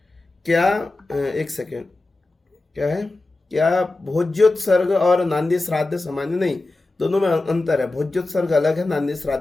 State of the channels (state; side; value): quieter; right; 3.1 dB